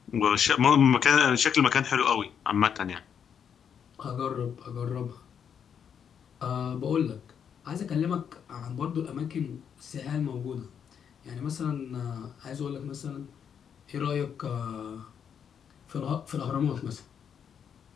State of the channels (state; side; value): quieter; right; 7.8 dB